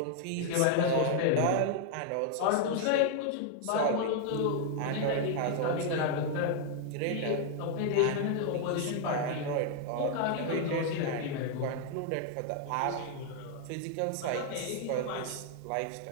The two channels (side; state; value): both; different; correlation 0.00